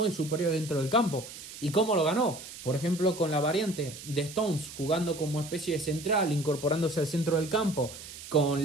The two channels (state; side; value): noise; right; hiss, 13 dB below the sound